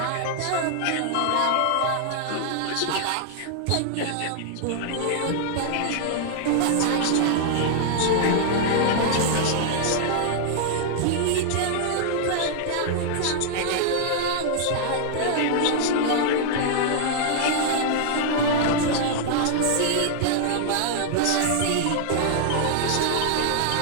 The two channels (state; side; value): different; both; correlation -0.01